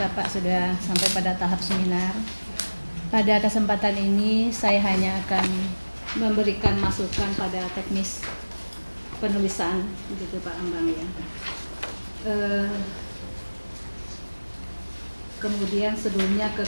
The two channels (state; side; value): inverted; both; correlation -1.00